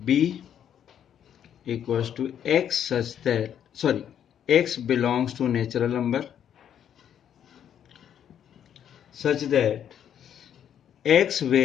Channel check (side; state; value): right; quieter; 9.4 dB